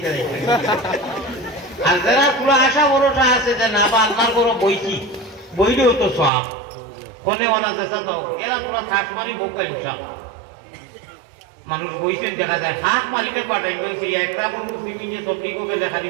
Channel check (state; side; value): drops out; left; at 6.3 s